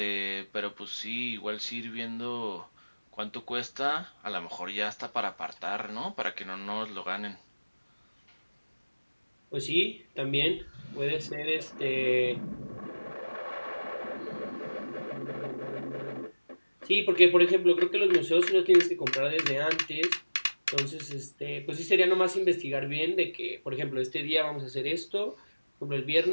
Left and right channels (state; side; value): inverted; both; correlation -1.00